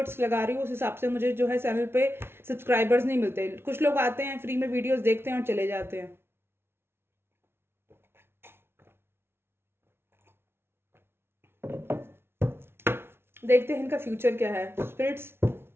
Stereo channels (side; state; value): left; late; 0.12 ms